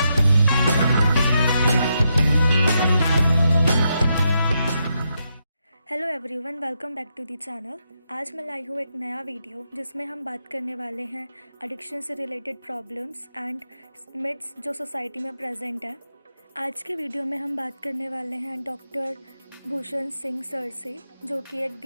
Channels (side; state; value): both; inverted; correlation -0.82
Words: everyone, welcome back to the channel. आज मैं लाई हूँ एक नया वीडियो जिसमें हम बात करने वाले हैं एडिक्शन से रिलेटेड प्रॉब्लम्स एंड मिथ्स जो सोसाइटी में प्रेजेंट है। आज के वीडियो में हम बात करने वाले हैं डॉक्टर भूषण सिंह सर से, जो कि एक